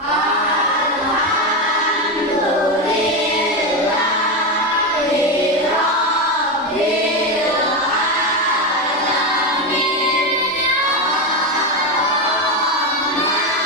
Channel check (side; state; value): both; normal; correlation 0.13